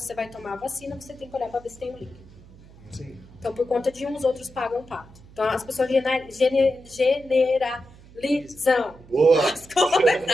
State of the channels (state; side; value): noise; right; hum, 22 dB below the sound